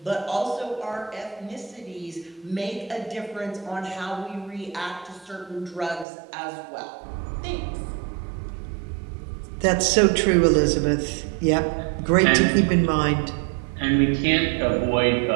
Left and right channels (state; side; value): drops out; left; at 6.1 s